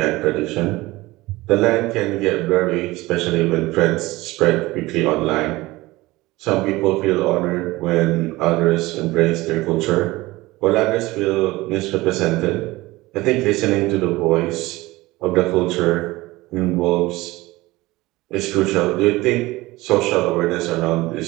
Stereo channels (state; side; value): quieter; left; 19.8 dB